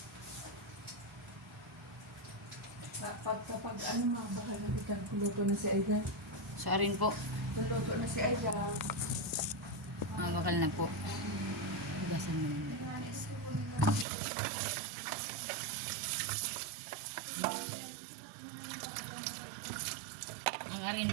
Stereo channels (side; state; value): left; drops out; at 14.1 s